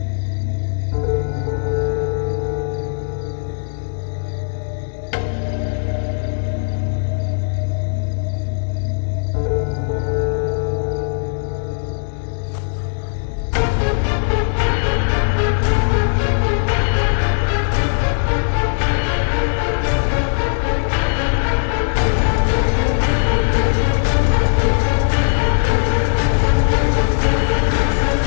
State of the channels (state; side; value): silent; right; 67 dB below the other